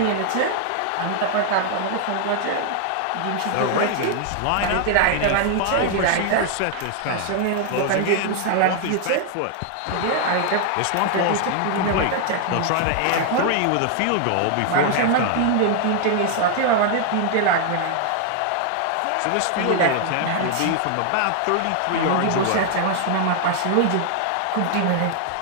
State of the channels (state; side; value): different; both; correlation 0.00